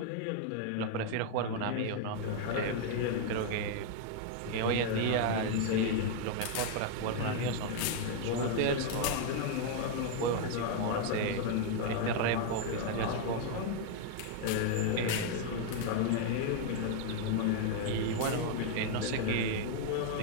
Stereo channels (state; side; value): different; both; correlation 0.00